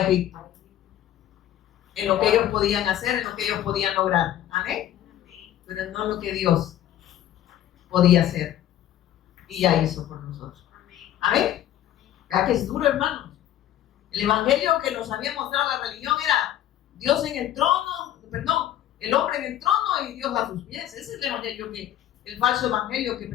En lo que ellos podían hacer, en lo que ellos podían lograr. ¿Amén? Pero no lo que Dios podía hacer y ya hizo por nosotros. ¿Amén? ¿Verdad que es duro, hermanos? El evangelio que nos había mostrado la religión era Dios en el trono, el hombre en el trono y Dios a sus pies. Ese es el evangelio el falso evangelio que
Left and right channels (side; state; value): right; quieter; 12.1 dB